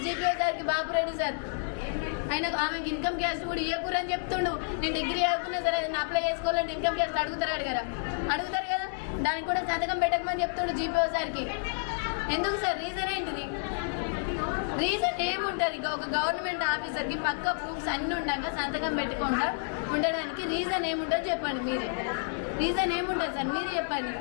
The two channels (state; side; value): silent; right; digital silence